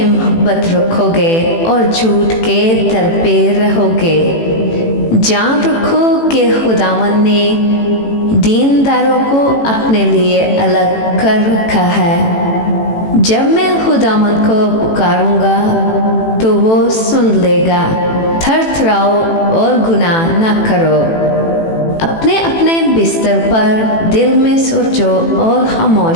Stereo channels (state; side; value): late; right; 18 ms